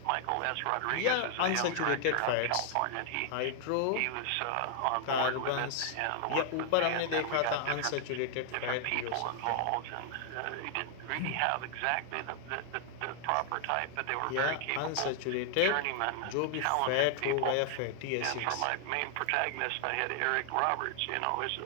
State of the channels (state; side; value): different; both; correlation 0.00